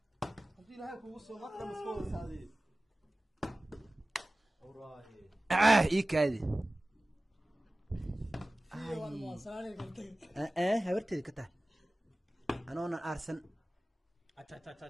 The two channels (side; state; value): both; normal; correlation 0.96